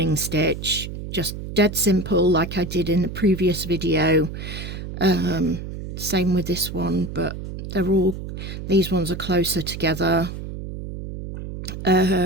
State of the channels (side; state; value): right; noise; hum, 8 dB below the sound